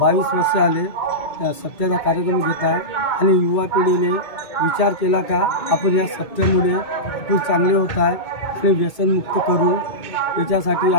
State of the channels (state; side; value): late; right; 2.2 ms